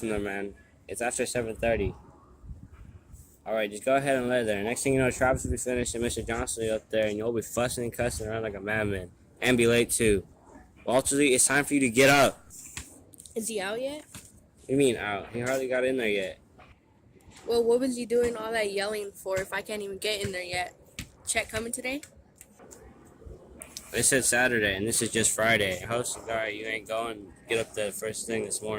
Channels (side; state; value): both; identical; correlation 1.00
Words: there, man. It's after 7:30. Alright, just go ahead and lay there. Next thing you know, Travis will be finished and Mr. Johnson will be up there and you'll be fussing and cussing around like a madman. And be late too. Walter D, it's time for you to get up. Is he out yet? What do you mean out? He hardly got in there yet. Well, what was you doing all that yelling for if I can't even get in there yet? Check coming today? They said Saturday, and this is just Friday. Host, alright, you ain't going. Get up the first thing this